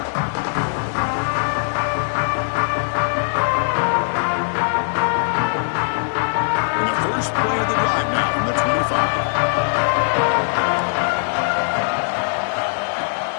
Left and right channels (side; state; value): right; silent; digital silence